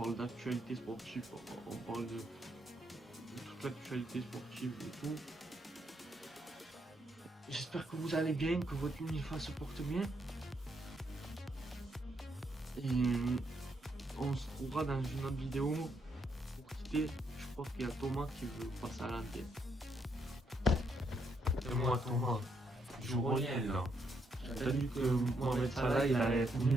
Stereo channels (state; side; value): normal; both; correlation 0.77